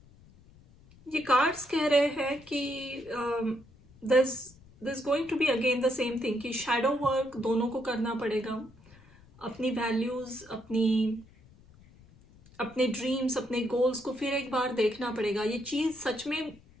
ये कार्ड्स कह रहे हैं कि this going to be again the same thing कि शैडो वर्क दोनों को करना पड़ेगा। अपनी वैल्यूज, अपने ड्रीम्स, अपने गोल्स को फिर एक बार देखना पड़ेगा। ये चीज़ सच में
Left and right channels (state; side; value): noise; left; rumble, 25 dB below the sound